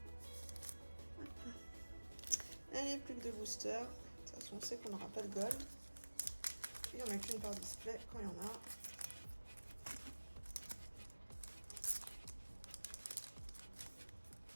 Allez, plus que 2 boosters. De toute façon, on sait qu'on n'aura pas de gold. Il n'y en a qu'une par display quand il y en a.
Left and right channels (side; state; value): both; inverted; correlation -1.00